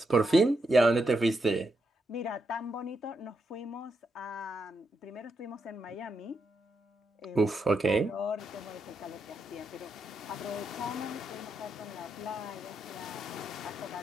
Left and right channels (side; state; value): both; normal; correlation 0.82